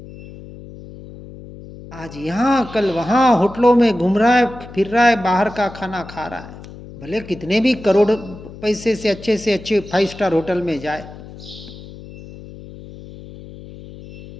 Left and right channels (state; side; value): noise; left; hum, 16 dB below the sound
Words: आज यहाँ कल वहाँ होटलों में घूम रहा है, फिर रहा है, बाहर का खाना खा रहा है। भले कितने भी करोड़ पैसे से अच्छे 5 स्टार होटल में जाए,